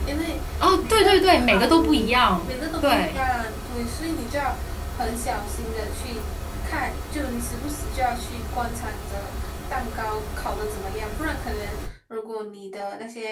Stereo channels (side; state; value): both; identical; correlation 1.00